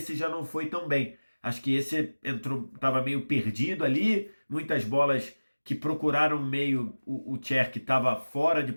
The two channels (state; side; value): inverted; both; correlation -1.00